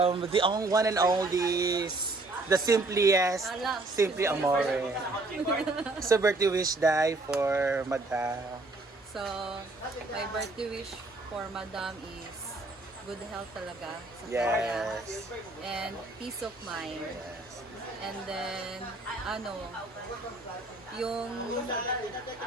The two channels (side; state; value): left; quieter; 3.1 dB